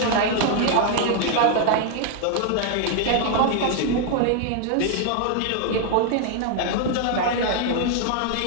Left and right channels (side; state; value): both; different; correlation 0.00